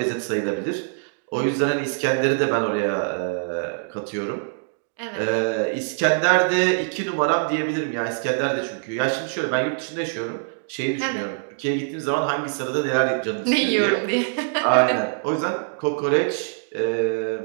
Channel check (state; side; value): silent; left; digital silence